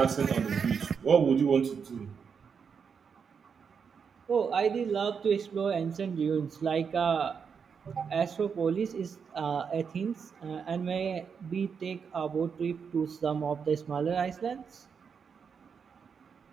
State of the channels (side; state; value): left; quieter; 6.4 dB